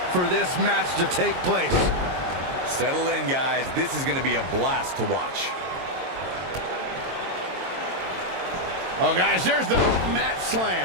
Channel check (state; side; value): late; left; 22 ms